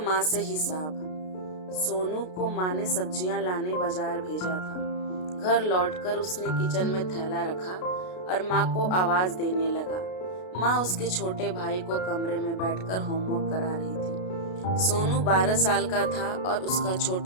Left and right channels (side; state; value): right; late; 33 ms